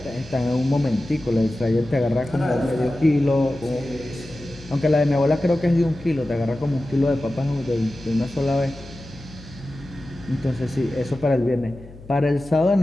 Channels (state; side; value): noise; left; hum, 18 dB below the sound